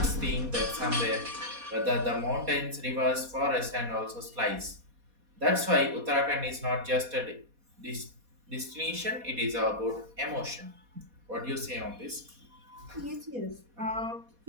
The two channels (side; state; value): left; late; 4.2 ms